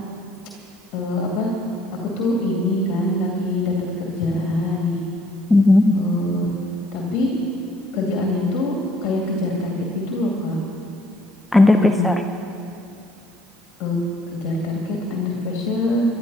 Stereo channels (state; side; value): normal; both; correlation 0.64